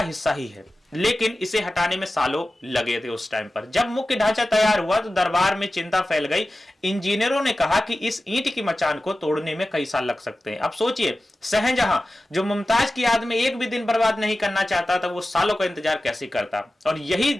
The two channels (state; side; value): normal; both; correlation 0.95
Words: हिस्सा ही है। लेकिन इसे हटाने में सालों लगे थे। उस टाइम पर जब मुख्य ढांचा तैयार हुआ तो दरबार में चिंता फैल गई। इंजीनियरों ने कहा कि इस ईंट की मचान को तोड़ने में कई साल लग सकते हैं। अब सोचिए, शाहजहां जो मुमताज की याद में एक भी दिन बर्बाद नहीं करना चाहता था, वो सालों का इंतजार कैसे करता। और यही